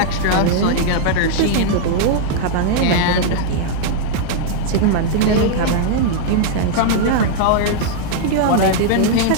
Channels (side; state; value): both; different; correlation -0.01